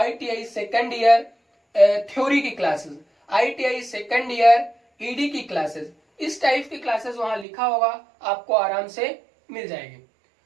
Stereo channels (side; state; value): left; drops out; at 7.5 s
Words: सेकेंड ईयर थ्योरी की classes, ITI second year ED की क्लासेस, इस टाइप की क्लासेस वहां लिखा होगा, आपको आराम से मिल जाएगी।